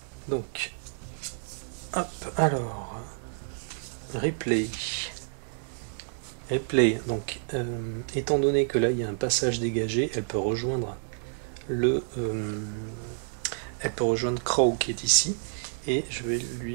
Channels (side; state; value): left; silent; digital silence